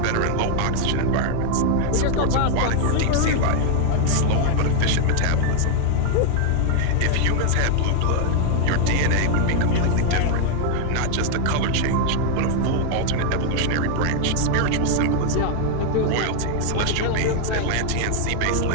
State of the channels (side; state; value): both; different; correlation 0.00